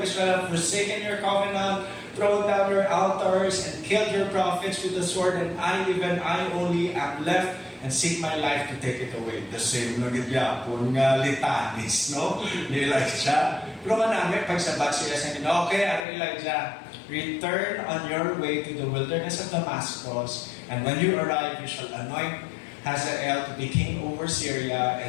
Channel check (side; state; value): right; drops out; at 16.1 s